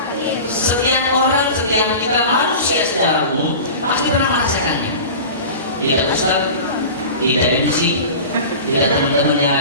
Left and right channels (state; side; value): inverted; both; correlation -0.34